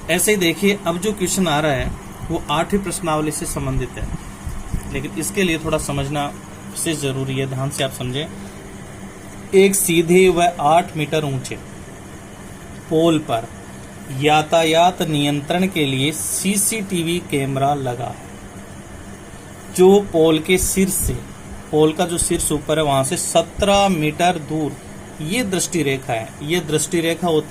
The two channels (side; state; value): both; identical; correlation 1.00